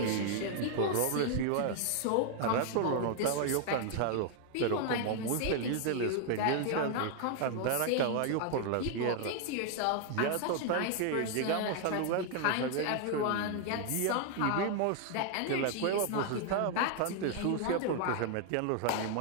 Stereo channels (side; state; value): both; different; correlation 0.00